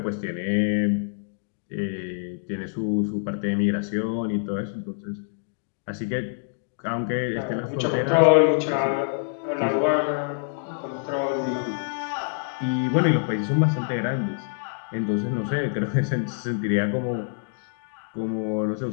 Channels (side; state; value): right; silent; digital silence